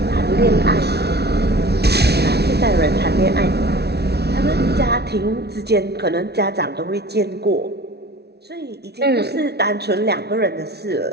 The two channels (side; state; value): left; late; 0.48 ms